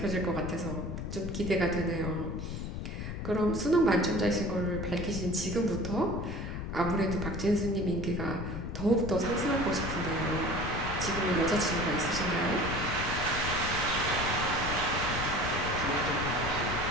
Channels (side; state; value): left; noise; rumble, 5 dB below the sound